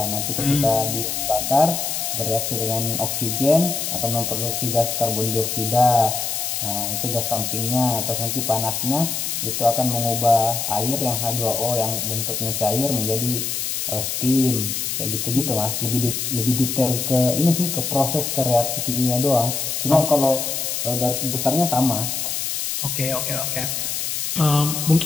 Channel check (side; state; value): left; noise; hiss, 2 dB below the sound